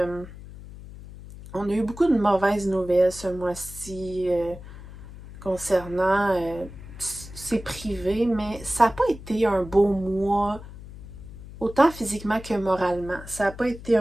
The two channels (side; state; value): left; noise; hum, 15 dB below the sound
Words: on a eu beaucoup de mauvaises nouvelles ce mois-ci concernant, c'est privé, mais ça n'a pas été un beau mois, autant physiquement que moralement. Ça n'a pas été